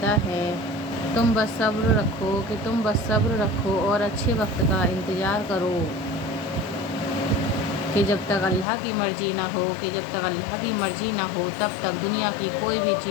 है, तुम बस सब्र रखो, कि तुम बस सब्र रखो और अच्छे वक्त का इंतज़ार करो। कि जब तक अल्लाह की मर्ज़ी ना हो, कि जब तक अल्लाह की मर्ज़ी ना हो तब तक दुनिया की कोई भी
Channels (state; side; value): drops out; right; at 8.7 s